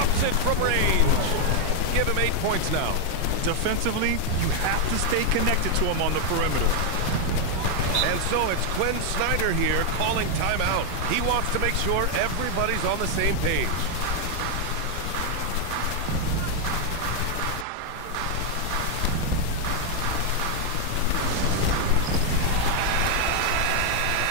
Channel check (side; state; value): both; different; correlation 0.00